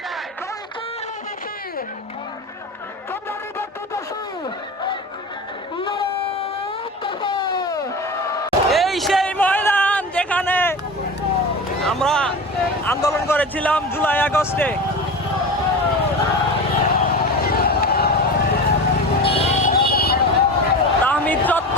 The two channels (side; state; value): both; normal; correlation 0.28